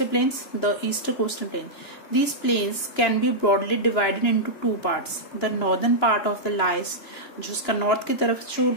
plains, the eastern coastal plain. These plains can be broadly divided into 2 parts. The northern part of the lies, जो उसका नॉर्थ की तरफ जो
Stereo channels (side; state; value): right; late; 2.9 ms